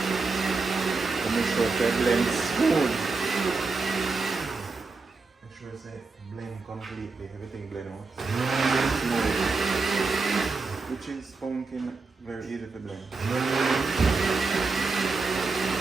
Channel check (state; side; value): quieter; left; 4.1 dB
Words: And make sure it blends smooth. Make sure it's blend completely, everything blend out. Smooth. Which is pumpkin, very easy to blend.